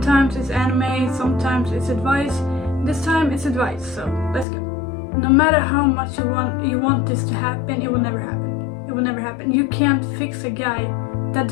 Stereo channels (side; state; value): right; drops out; at 4.5 s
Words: it's anime, sometimes it's advice. This time it's advice, so let's go. No matter how much you want this to happen, it will never happen. It will never happen. You can't fix a guy that